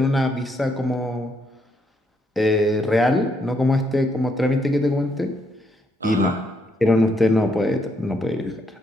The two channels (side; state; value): both; normal; correlation 0.75